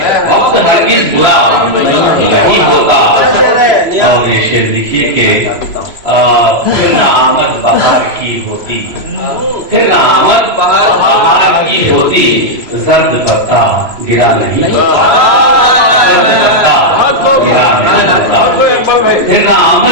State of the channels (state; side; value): late; left; 3.0 ms